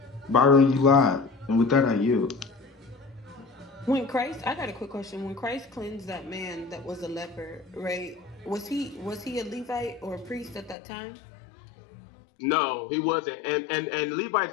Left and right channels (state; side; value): drops out; right; at 10.8 s